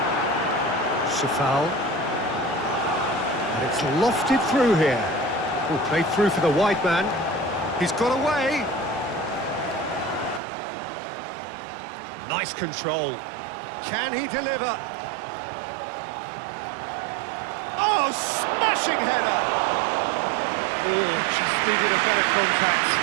Safal. And it's lofted through here. Oh, played through for the wide man. He's got away. Nice control. Can he deliver? Oh, smashing header! Oh, just needed a better contact.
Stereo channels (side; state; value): left; drops out; at 10.4 s